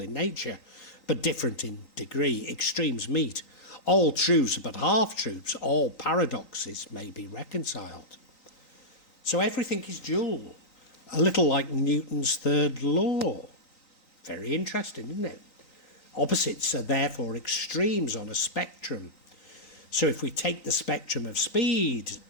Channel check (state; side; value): late; right; 3.9 ms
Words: in nature, but different in degree. Extremes meet. All truths are but half-truths. All paradoxes may be reconciled. So everything is dual. A little like Newton's third law. Very interesting, isn't it? Opposites are therefore extremes on a spectrum. So if we take the spectrum of speed,